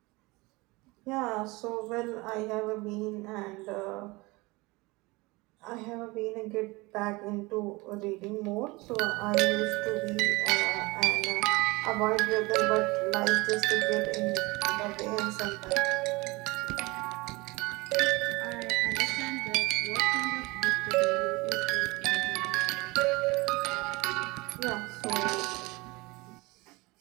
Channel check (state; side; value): quieter; left; 23.5 dB